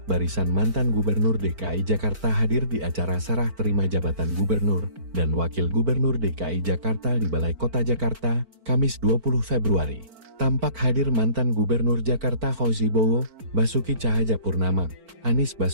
barisan mantan Gubernur DKI Jakarta hadir di acara serah terima jabatan Gubernur dan Wakil Gubernur DKI Jakarta di Balai Kota Jakarta, Kamis 20 Februari. Tampak hadir mantan Gubernur Jakarta Fauzi Bowo, Basuki Cahayapurnama, Anies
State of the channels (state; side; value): late; left; 4.4 ms